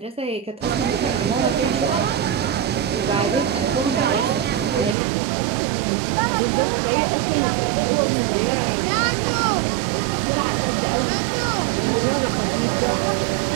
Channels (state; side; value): drops out; left; at 5.0 s